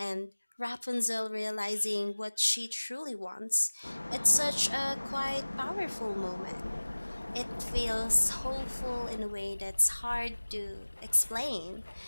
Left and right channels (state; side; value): inverted; both; correlation -1.00